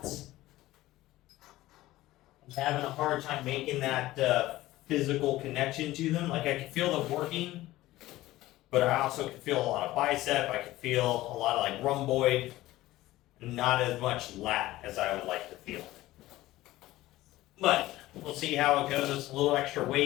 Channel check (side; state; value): right; quieter; 16.7 dB